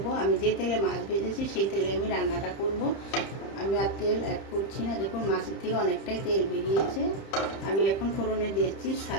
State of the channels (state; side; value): late; right; 30 ms